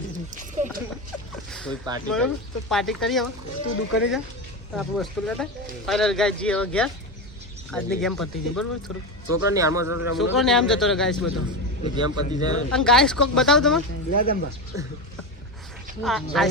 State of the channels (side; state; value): both; normal; correlation 0.18